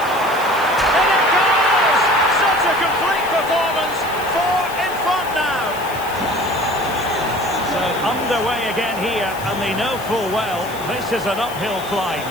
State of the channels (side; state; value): left; noise; hiss, 16 dB below the sound